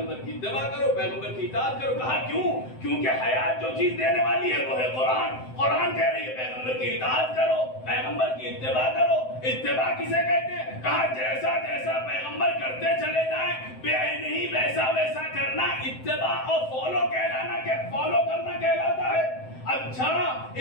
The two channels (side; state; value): right; late; 7.8 ms